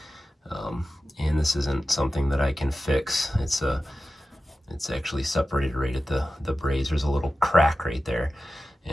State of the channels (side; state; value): both; normal; correlation 0.94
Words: And this isn't something that I can fix. It's actually separated right at the braze. There's a little crack right there.